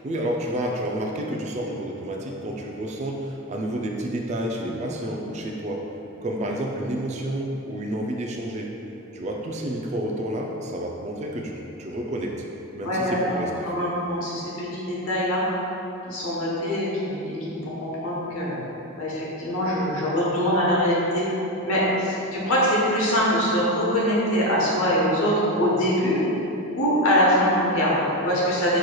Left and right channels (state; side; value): normal; both; correlation 0.15